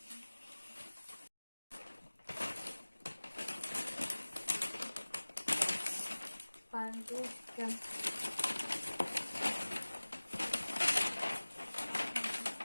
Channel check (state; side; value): inverted; both; correlation -1.00